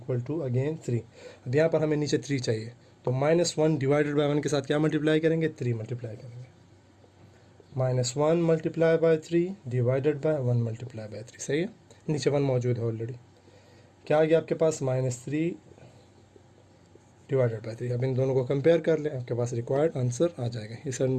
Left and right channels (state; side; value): identical; both; correlation 1.00